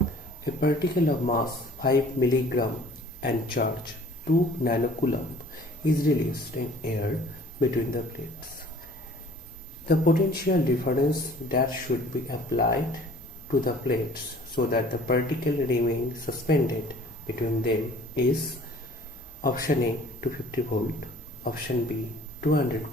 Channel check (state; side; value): normal; both; correlation 0.51